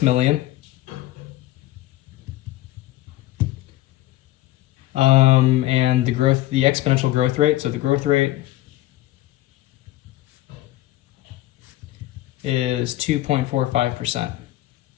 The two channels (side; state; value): right; quieter; 15.7 dB